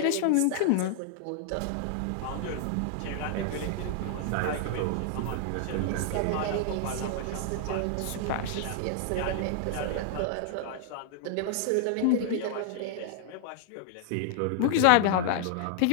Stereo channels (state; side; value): different; both; correlation -0.01